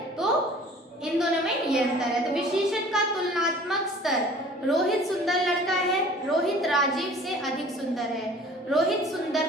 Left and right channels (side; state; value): both; normal; correlation 0.48